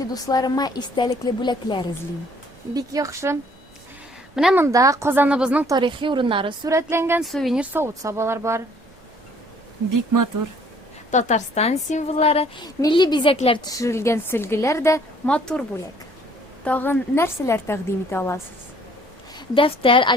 дусларыма истәлекле бүләкләр эзлим. Бик яхшы. Менә монда Казаныбызның тарихи урыннары сурәтләнгән сувенир савыт-сабалар бар. Бик матур. Татарстан символлары, милли бизәкләр төшерелгән сөлгеләр дә матур бүләк. Тагын нәрсәләр тәкъдим итә аласыз? Дәфтәр,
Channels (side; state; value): right; noise; rumble, 28 dB below the sound